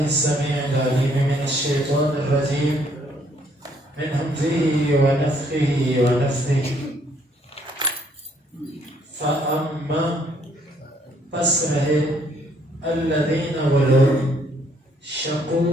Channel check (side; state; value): both; normal; correlation 0.66